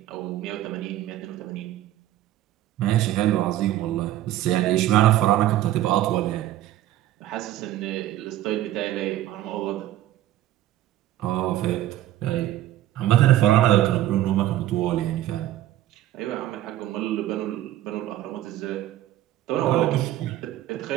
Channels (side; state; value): left; quieter; 13.8 dB